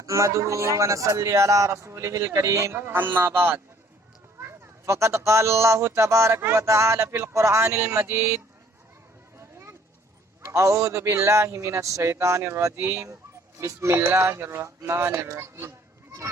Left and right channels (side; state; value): both; normal; correlation 0.58